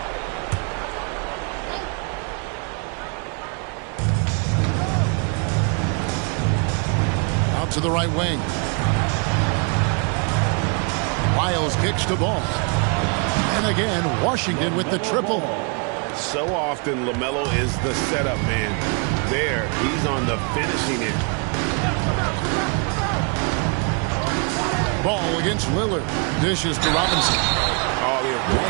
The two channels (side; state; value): left; quieter; 35.9 dB